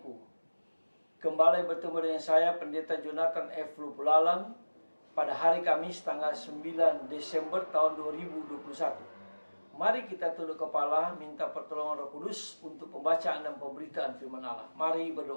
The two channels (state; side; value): inverted; both; correlation -1.00